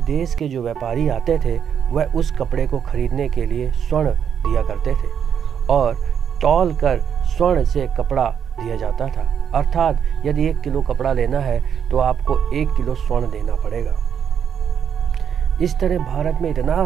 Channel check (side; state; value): left; quieter; 8.1 dB